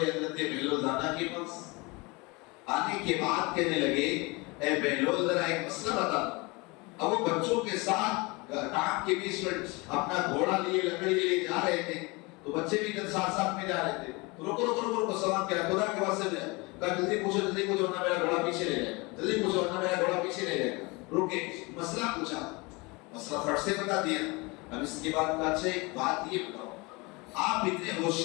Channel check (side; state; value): right; quieter; 26.2 dB